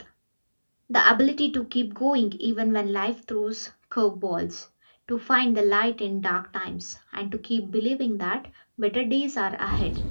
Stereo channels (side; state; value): both; inverted; correlation -1.00